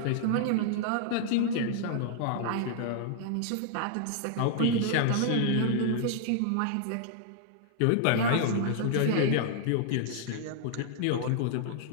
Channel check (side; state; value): both; different; correlation -0.01